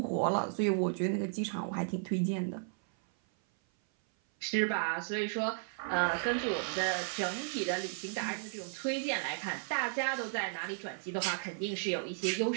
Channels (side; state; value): left; silent; 55 dB below the other